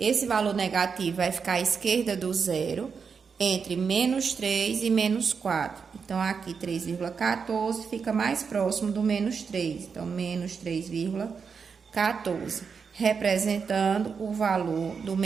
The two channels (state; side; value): quieter; left; 5.8 dB